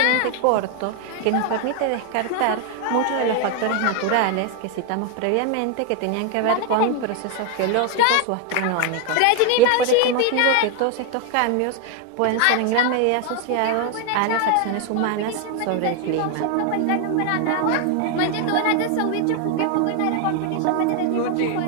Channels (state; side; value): different; both; correlation 0.01